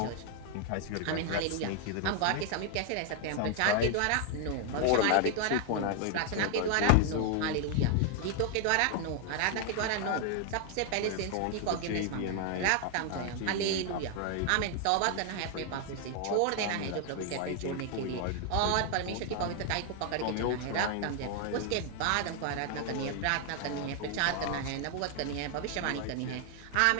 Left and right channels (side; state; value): both; different; correlation 0.00